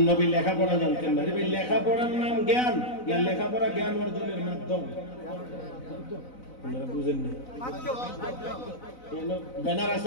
নবী লেখাপড়া জানতেন না লেখাপড়ার নাম জ্ঞান লেখাপড়া জ্ঞান অর্জনের মাধ্যম আপনারা বুঝেন না ব্যানার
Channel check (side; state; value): right; late; 4.0 ms